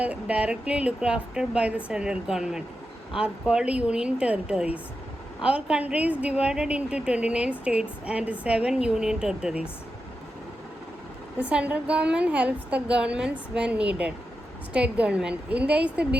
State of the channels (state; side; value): normal; both; correlation 0.89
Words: looked after by the central government, are called union territories. Our country is divided into 29 states and 7 union territories. The central government helps the governments when needed. State government. India is a